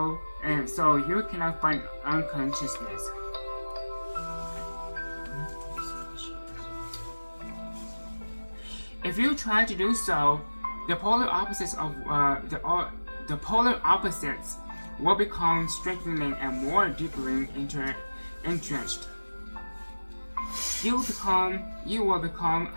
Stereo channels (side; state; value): both; inverted; correlation -1.00